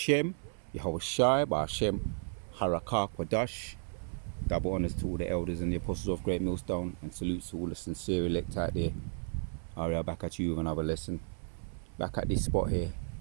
Yahweh Shai Ba'Shem, Harakah Kwadash. Double honors to all the elders and the apostles of Great Millstone, and salutes to all the sincere elect out there. Aria, back at you with another lesson. Back at this spot here.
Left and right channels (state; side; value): silent; left; 55 dB below the other